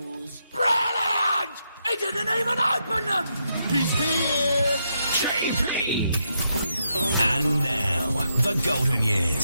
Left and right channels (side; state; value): both; inverted; correlation -0.80